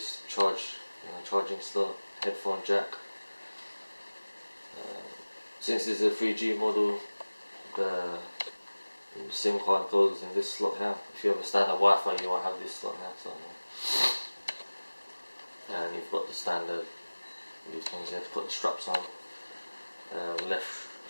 charging slot, headphone jack. Since this is a 3G model, the SIM card goes in this slot here. If you have a standard Wi-Fi, you won't have this slot here. So, yeah. And you've got the standard, these things you have to put the straps on, left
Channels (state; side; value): inverted; both; correlation -1.00